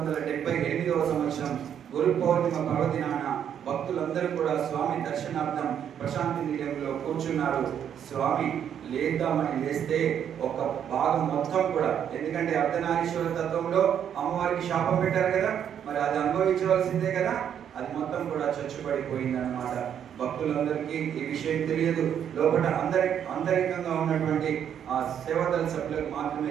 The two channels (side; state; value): left; quieter; 9.0 dB